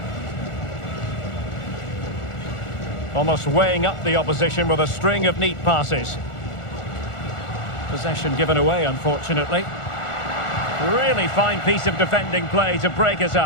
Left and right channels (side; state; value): right; late; 1.4 ms